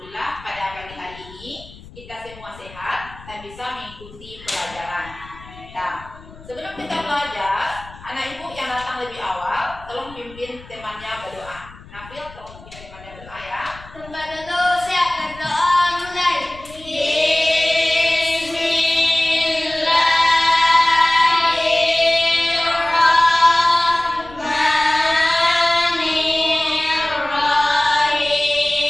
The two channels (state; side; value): noise; left; rumble, 20 dB below the sound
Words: pada pagi hari ini kita semua sehat dan bisa mengikuti pelajaran. Nah, sebelum kita belajar, anak ibu yang datang lebih awal, tolong pimpin temannya berdoa. Nafil, tolong pimpin temannya berdoa ya. Tempat dulu, siap berdoa mulai.